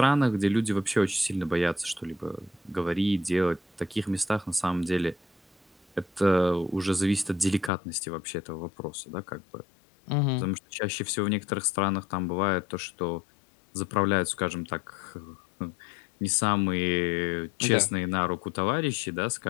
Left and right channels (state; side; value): drops out; right; at 7.7 s